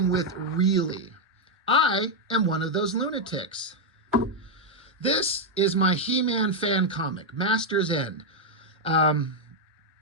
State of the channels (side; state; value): both; normal; correlation 0.01